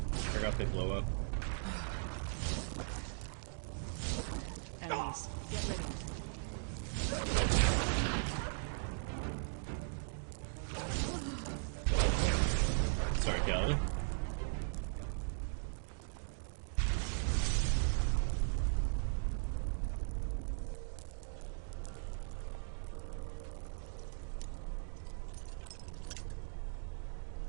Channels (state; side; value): silent; left; digital silence